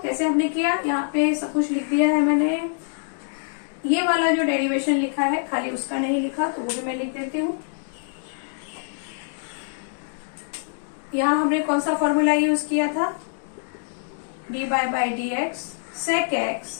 हमने किया, यहाँ पे सब कुछ लिख दिया है मैंने। ये वाला जो डेरिवेशन लिखा है खाली उसका नहीं लिखा, तो वो भी मैं लिख देती हूँ। यहाँ हमने कौन सा फॉर्मूला यूज किया था, d by d x sec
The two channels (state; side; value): silent; right; digital silence